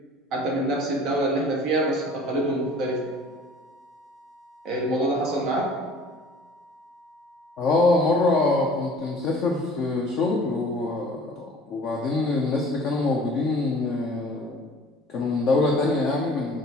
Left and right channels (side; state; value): both; normal; correlation 0.49